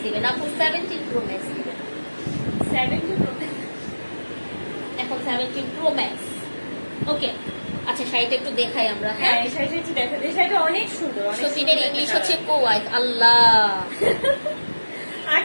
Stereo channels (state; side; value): inverted; both; correlation -1.00